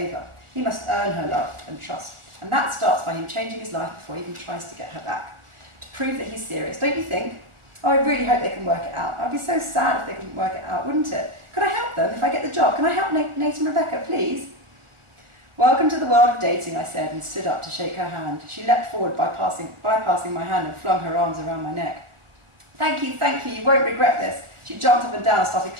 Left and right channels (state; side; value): late; left; 1.4 ms